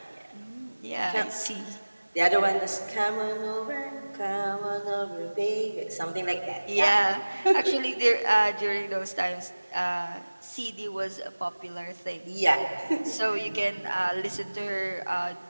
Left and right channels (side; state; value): both; inverted; correlation -1.00